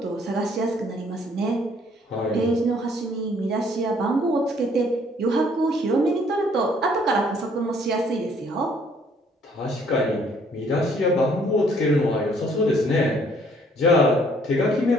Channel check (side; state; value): both; normal; correlation 0.62